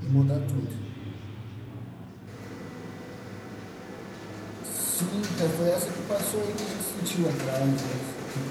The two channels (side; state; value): both; identical; correlation 1.00